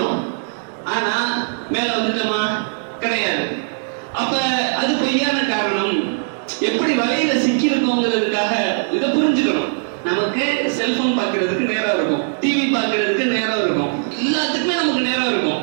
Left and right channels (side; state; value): left; silent; digital silence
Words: ஆனா மேல வந்துட்டோமா? கிடையாது. அப்ப அது பொய்யான காரணம். எப்படி வலையில சிக்கி இருக்கோங்கிறதுக்காக இதை புரிஞ்சுக்கணும். நமக்கு செல்போன் பார்க்கறதுக்கு நேரம் இருக்கும், டிவி பார்க்கறதுக்கு நேரம் இருக்கும், எல்லாத்துக்குமே நமக்கு நேரம்